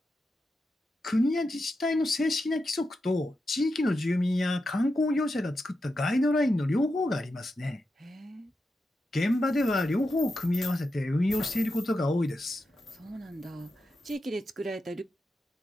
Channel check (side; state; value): both; normal; correlation 0.88